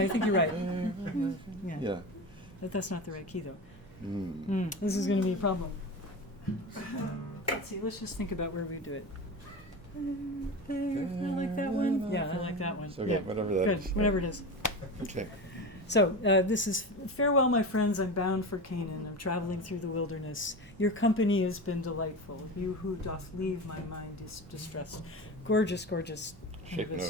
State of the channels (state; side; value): normal; both; correlation 0.26